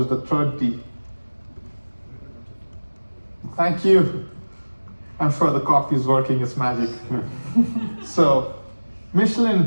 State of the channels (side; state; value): both; inverted; correlation -1.00